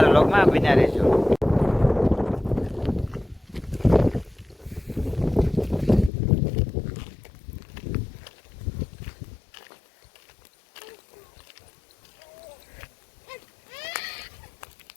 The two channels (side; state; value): right; drops out; at 6.1 s